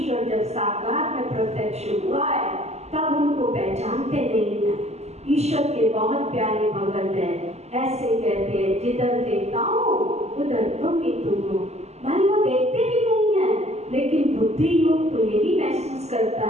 जब साकार में प्रत्यक्ष हुआ है, तब उनको पहचानते नहीं है। ईश्वर के बहुत प्यारे भगत हैं, ऐसे कहते हैं, जिधर देखता हूँ उधर तुम ही तुम हो। भाई वो देखते भी नहीं है, लेकिन बुद्धि योग तो यही महसूस करता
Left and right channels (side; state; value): left; late; 0.31 ms